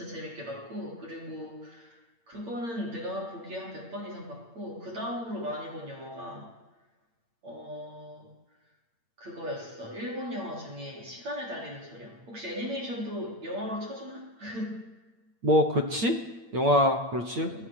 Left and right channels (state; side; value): late; left; 8.8 ms